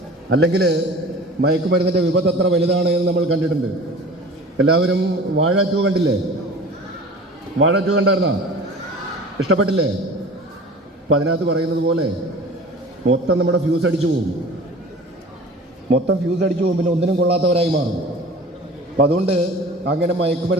അല്ലെങ്കിൽ മയക്കുമരുന്നിൻ്റെ വിപത്ത് എത്ര വലുതാണ് എന്ന് നമ്മൾ കണ്ടിട്ടുണ്ട്. എല്ലാവരും വാഴ 2 കണ്ടില്ലേ? വാഴ 2 കണ്ടായിരുന്നോ? ഇഷ്ടപ്പെട്ടില്ലേ? അപ്പം അതിനകത്ത് പറയുന്നത് പോലെ മൊത്തം നമ്മുടെ ഫ്യൂസ് അടിച്ചു പോകും. പിന്നെ ഒന്നിനും കൊള്ളാത്തവരായി മാറും. അപ്പം അതുകൊണ്ട് അങ്ങനെ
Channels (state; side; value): normal; both; correlation 0.41